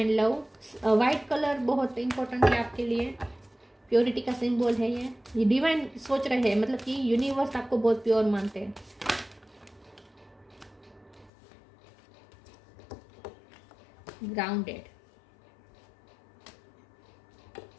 लव, वाइट कलर बहुत इंपॉर्टेंट है आपके लिए, प्योरिटी का सिंबल है ये डिवाइन सोच रहे हैं, मतलब कि यूनिवर्स आपको बहुत प्योर मानते हैं। Grounded,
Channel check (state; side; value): drops out; right; at 11.3 s